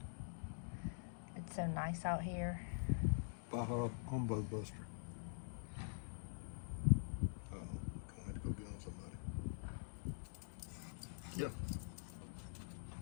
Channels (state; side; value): silent; right; digital silence